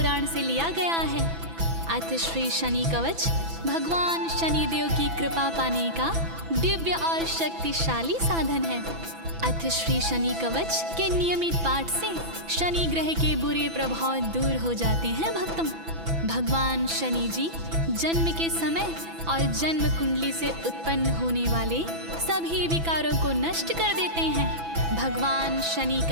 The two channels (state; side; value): late; left; 6.0 ms